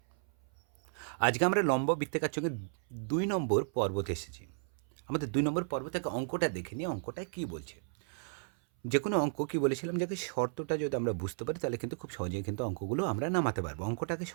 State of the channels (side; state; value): left; silent; 55 dB below the other